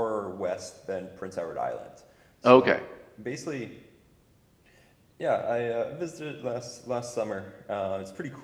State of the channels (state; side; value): identical; both; correlation 1.00